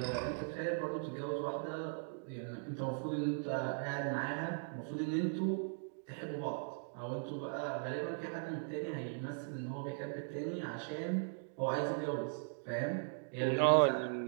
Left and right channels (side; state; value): left; silent; digital silence